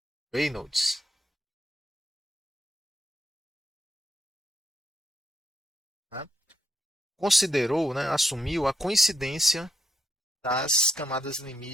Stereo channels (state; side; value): normal; both; correlation 0.78